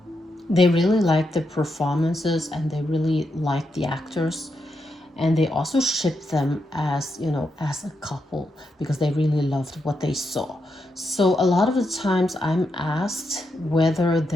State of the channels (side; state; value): both; normal; correlation 0.83